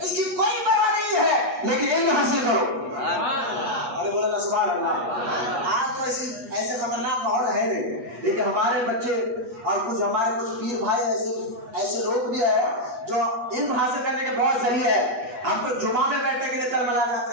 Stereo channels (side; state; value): left; late; 8.2 ms